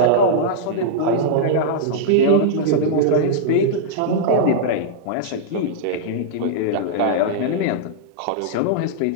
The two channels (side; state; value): both; different; correlation -0.02